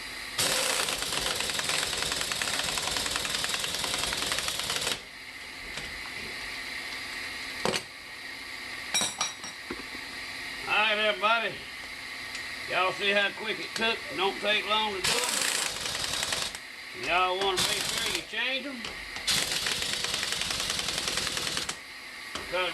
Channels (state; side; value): identical; both; correlation 1.00